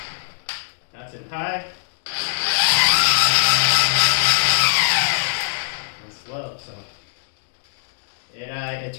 That's in high and slow, so it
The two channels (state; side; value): silent; right; digital silence